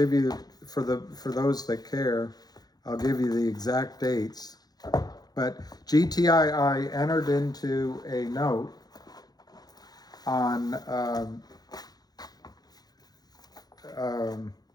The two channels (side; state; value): right; late; 0.19 ms